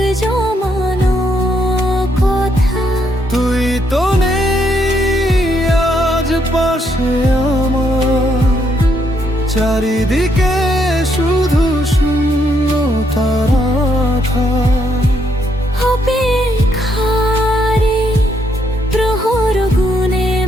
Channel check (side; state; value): both; normal; correlation 0.74